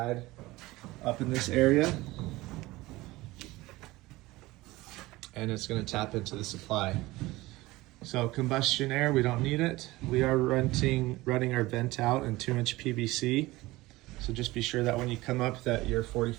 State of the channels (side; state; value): left; quieter; 19.6 dB